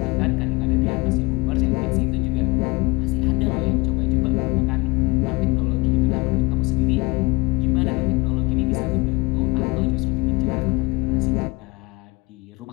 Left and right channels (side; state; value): right; quieter; 25.0 dB